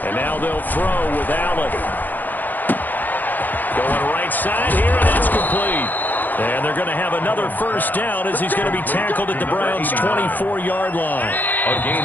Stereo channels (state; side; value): late; right; 0.085 ms